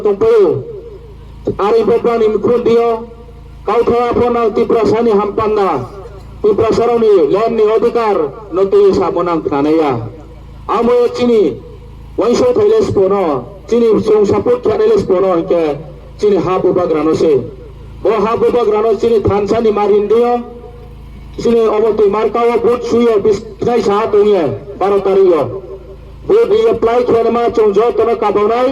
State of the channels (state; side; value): identical; both; correlation 1.00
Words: तंपयो आरि बब्रानि मुखुन दियो काउथवा फना तिप्रासानि हामपान्ना तिप्रासारनि लैंडनि अधिकार नति साबनां नानैया आमो चिनि वैसो थैलेस पोनो चिनि जों सपोर्ट खेलेस पोनो के चिनि हा बुबाग्रानो से ओ हा बुबाग्रानो चिनि थानसानि मारिन दियो चिनि अबति मार्काव भोट सुयो बिस्नाय सा दंये 12 तारिखो भोट रि अप्लाई खेलमा जों जतनो काबावनाय